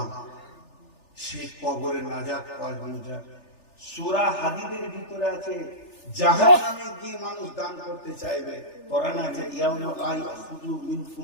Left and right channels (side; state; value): right; late; 3.4 ms